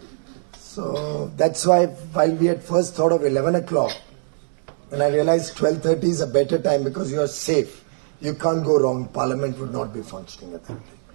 So that's why while we had first thought of 11 o'clock, and I realized 12:30 is a better time because you are safe. You can't go wrong. Parliament would not be functioning at that time.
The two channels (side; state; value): left; silent; digital silence